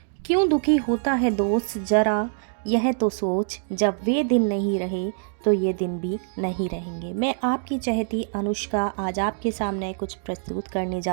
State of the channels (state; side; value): silent; left; digital silence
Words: क्यों दुखी होता है दोस्त ज़रा यह तो सोच, जब वे दिन नहीं रहे तो ये दिन भी नहीं रहेंगे। मैं आपकी चहेती अनुष्का आज आपके सामने कुछ प्रस्तुत करने